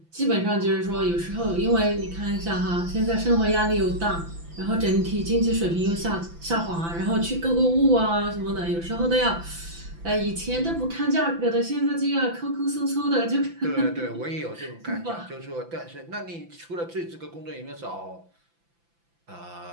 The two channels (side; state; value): left; late; 5.9 ms